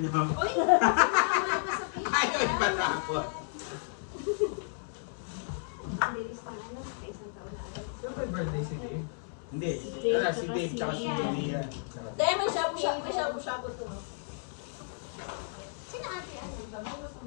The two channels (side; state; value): right; silent; digital silence